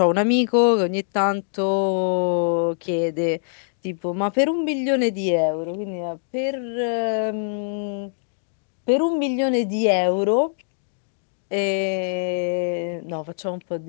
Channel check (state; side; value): silent; right; digital silence